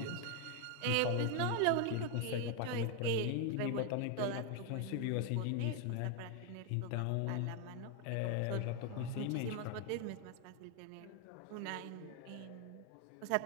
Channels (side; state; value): both; different; correlation 0.01